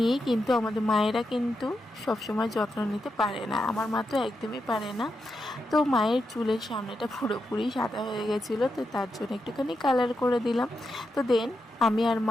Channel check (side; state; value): both; normal; correlation 0.86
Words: কিন্তু আমাদের মায়েরা কিন্তু সবসময় যত্ন নিতে পারে না। আমার মা তো একদমই পারে না। তো মায়ের চুলের সামনেটা পুরোপুরি সাদা হয়ে গেছিলো, তো তার জন্য একটুখানি কালার করে দিলাম। তো দেন আমি আর